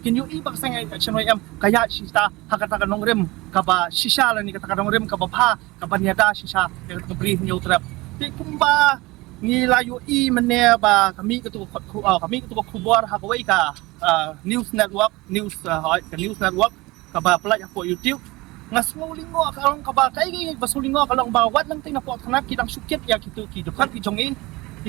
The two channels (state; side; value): quieter; left; 21.7 dB